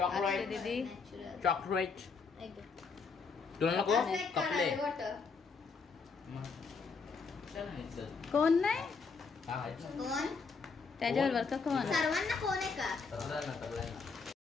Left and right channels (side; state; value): right; quieter; 4.9 dB